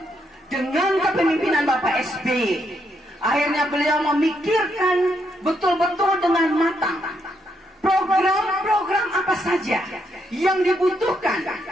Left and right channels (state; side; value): normal; both; correlation 0.77